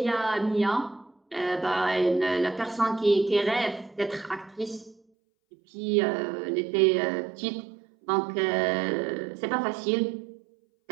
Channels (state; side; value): drops out; left; at 5.0 s